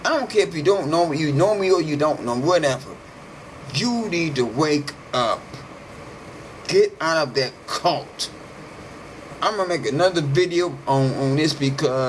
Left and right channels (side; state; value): both; identical; correlation 1.00